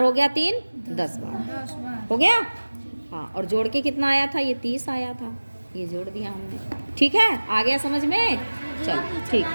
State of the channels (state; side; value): inverted; both; correlation -1.00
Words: हो गया? 3, 10 बार हो गया। हाँ, और जोड़ के कितना आया था? ये 30 आया था, ये जोड़ दिया हमने। ठीक है, आ गया समझ में? चलो ठीक